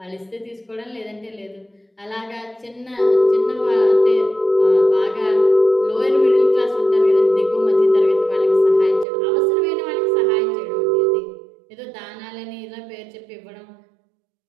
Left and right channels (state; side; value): drops out; left; at 9.1 s